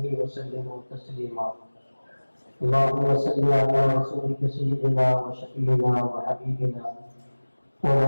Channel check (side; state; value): both; inverted; correlation -1.00